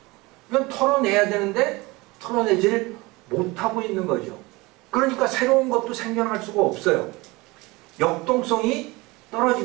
이건 털어내야 되는데 털어내지를 못하고 있는 거죠. 그러니까 새로운 것도 생겨날 수가 없어요. 역동성이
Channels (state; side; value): quieter; left; 23.0 dB